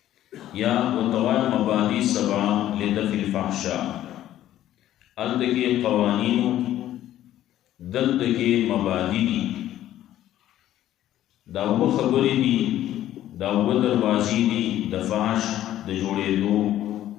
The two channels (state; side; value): quieter; right; 12.8 dB